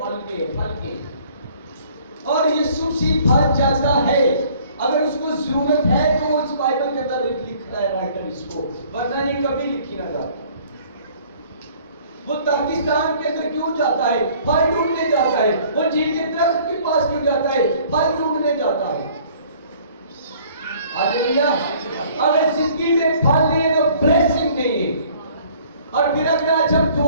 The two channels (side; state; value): both; inverted; correlation -0.55